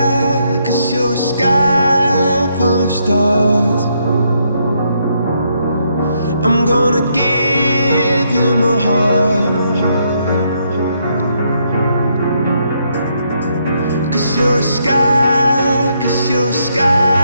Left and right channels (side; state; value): both; inverted; correlation -0.75